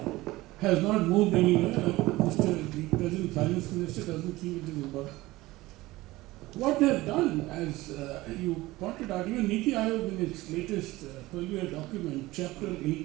has not moved anywhere. The present finance minister doesn't think it is important. What they have done, as you pointed out, even Niti Aayog in its latest 12-year document, chapter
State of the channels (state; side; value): quieter; left; 18.9 dB